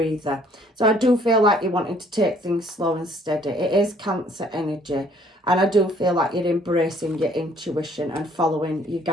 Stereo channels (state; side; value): normal; both; correlation 0.61